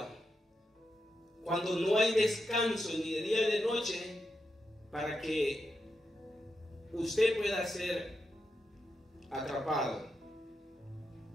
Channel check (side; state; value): both; normal; correlation 0.86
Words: cuando no hay descanso ni de día ni de noche para que usted pueda ser atrapado.